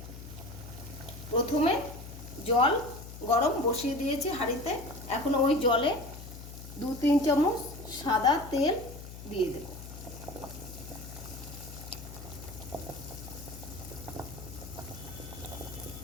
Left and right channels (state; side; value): noise; left; hum, 13 dB below the sound